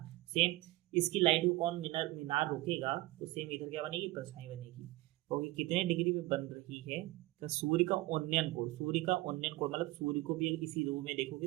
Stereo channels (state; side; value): quieter; left; 18.9 dB